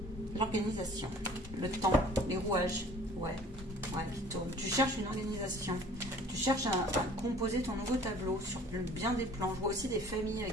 l'organisation, le temps, les rouages. Ouais, qui tourne. Tu cherches une organisation. Tu cherches à composer ton nouveau tableau sur bien des plans. Je vois aussi des familles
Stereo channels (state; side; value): normal; both; correlation 0.50